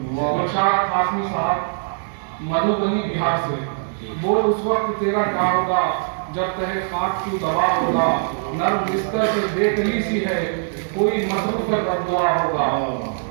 گلشاد قاسمی صاحب مدھوبنی بہار سے. بول اس وقت تیرا کیا ہوگا، جب کہے خاک تو دبا ہوگا. نرم بستر سے بے کلی سی ہے، کوئی مصروف بد دعا ہوگا.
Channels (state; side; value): silent; left; digital silence